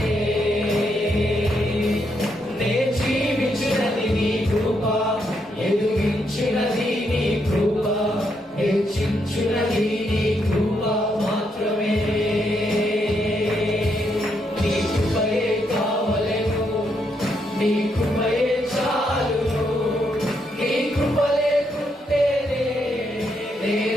నే జీవించినది నీ కృప, ఎదుగించినది నీ కృప, హెచ్చించినది నీ కృప మాత్రమే. నీ కృపయే కావలెను, నీ కృపయే చాలును. నీ కృప లేకుంటేనే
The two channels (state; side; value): normal; both; correlation 0.78